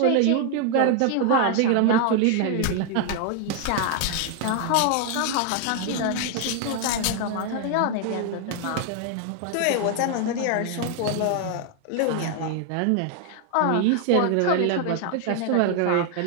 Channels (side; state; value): both; different; correlation 0.00